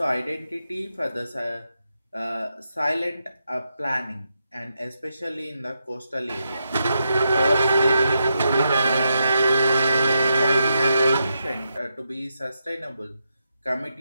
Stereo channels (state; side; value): inverted; both; correlation -0.84